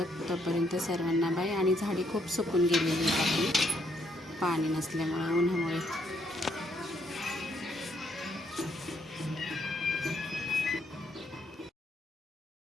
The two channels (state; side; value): normal; both; correlation 0.72